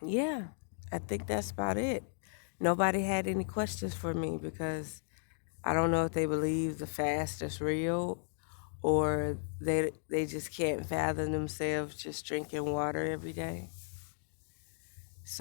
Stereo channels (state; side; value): silent; right; digital silence